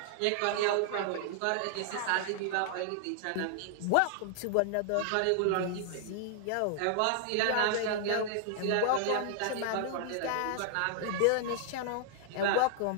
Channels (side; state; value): both; different; correlation -0.01